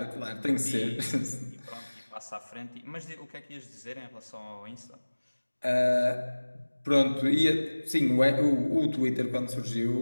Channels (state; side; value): inverted; both; correlation -1.00